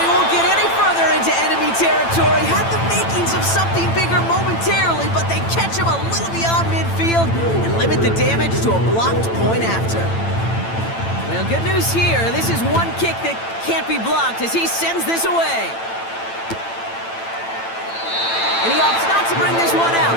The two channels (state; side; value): late; right; 8.9 ms